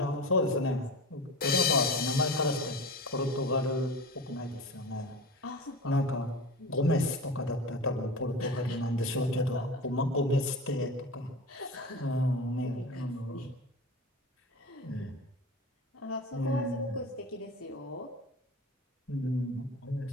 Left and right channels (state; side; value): normal; both; correlation 0.31